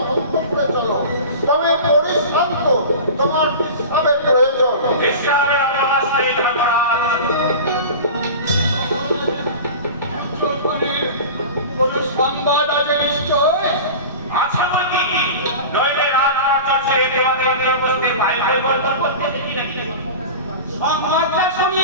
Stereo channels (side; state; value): both; inverted; correlation -0.33